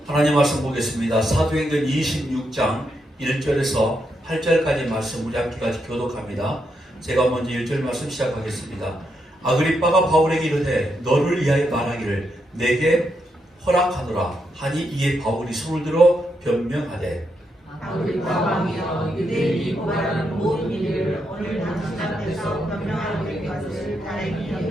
하나님 말씀 보겠습니다. 사도행전 26장 1절에서 8절까지 말씀 우리 함께 교독합니다. 제가 먼저 1절 말씀 시작하겠습니다. 아그리빠가 바울에게 이르되 너를 위하여 말하기를 내게 허락하노라 하니 이에 바울이 손을 들어 변명하되 아그리빠 왕이여 유대인이 고발하는 모든 일을 오늘 당신 앞에서 변명하게 된 것을 다행히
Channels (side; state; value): both; normal; correlation 0.81